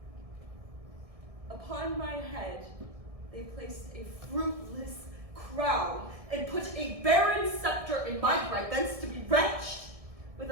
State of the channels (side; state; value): left; late; 1.6 ms